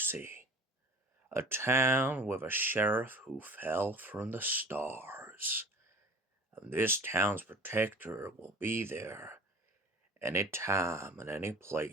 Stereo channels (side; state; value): both; normal; correlation 0.42